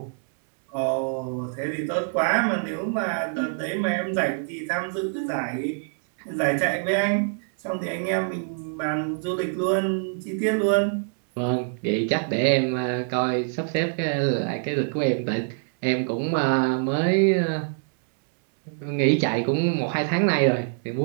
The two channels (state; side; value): silent; left; digital silence